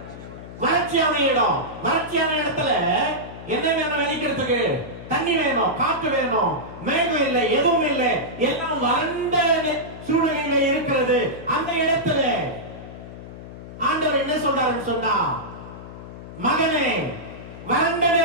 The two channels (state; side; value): noise; left; hum, 14 dB below the sound